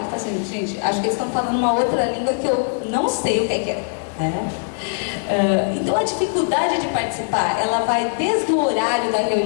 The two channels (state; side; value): silent; right; 65 dB below the other